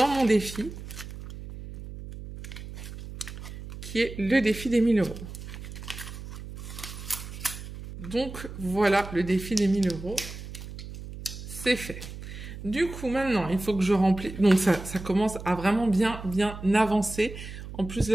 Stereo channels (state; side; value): noise; right; hum, 11 dB below the sound